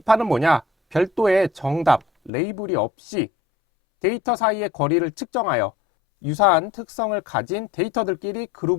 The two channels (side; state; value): right; drops out; at 2.3 s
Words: 뭐냐? 별도의 정답, 레이블이 없이 데이터 사이의 거리를 측정하여 유사한 특성을 가진 데이터들끼리